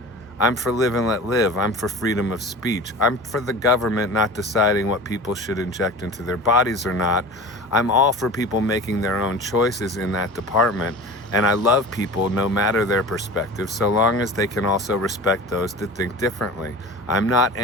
I'm for live and let live. I'm for freedom of speech. I'm for the government not deciding what people should inject into their bodies or not. I'm all for people making their own choices in that department. And I love people no matter their perspective, so long as they can also respect those that think differently. I'm not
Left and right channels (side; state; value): both; normal; correlation 0.35